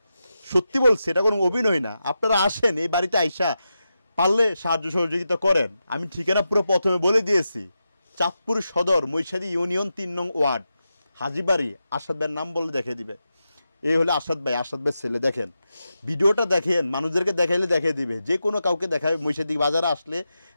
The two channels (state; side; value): inverted; both; correlation -0.89